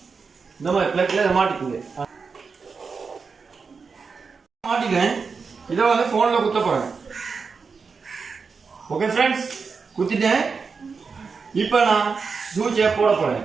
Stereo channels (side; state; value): left; quieter; 5.1 dB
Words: இந்த மாதிரி பிளக்ல இதை மாட்டிக்குங்க. மாட்டிக்கிறேன். இதை வந்து ஃபோனில் குத்த போகிறேன். ஓகே ஃப்ரெண்ட்ஸ், குத்திட்டேன். இப்போ நான் சூச்சியை போட போகிறேன்.